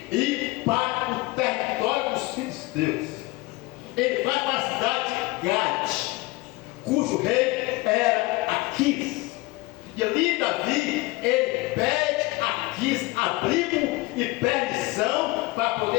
ir para o território dos filisteus. Ele vai para a cidade de Gade, cujo rei era Aquis. E ali Davi, ele pede a Aquis abrigo e permissão para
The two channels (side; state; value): right; quieter; 21.7 dB